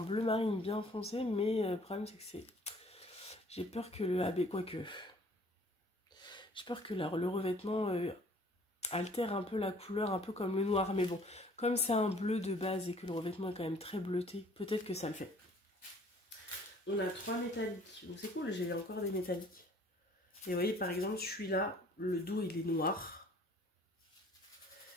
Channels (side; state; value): both; normal; correlation 0.55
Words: marine bien foncé. Mais le problème, c'est que c'est... J'ai peur que le AB, quoique... J'ai peur que le revêtement altère un peu la couleur, un peu comme le noir. Mais bon, comme c'est un bleu de base et que le revêtement est quand même très bleuté, peut-être que ça le fait. On a 3 métalliques. Donc c'est cool, j'ai encore des métalliques. Et vous voyez, par exemple, celui-là, le dos, il est noir.